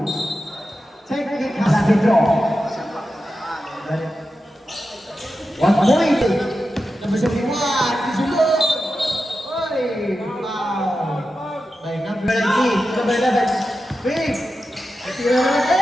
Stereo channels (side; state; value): both; normal; correlation 0.91